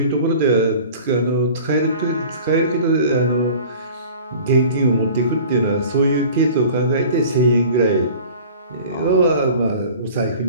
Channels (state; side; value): inverted; both; correlation -0.44